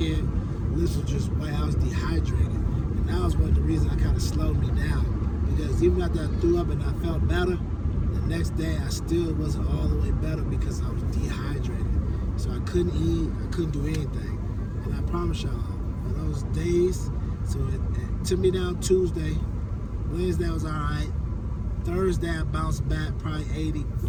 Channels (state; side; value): identical; both; correlation 1.00